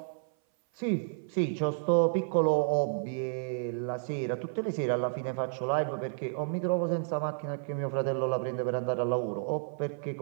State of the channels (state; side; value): silent; left; 57 dB below the other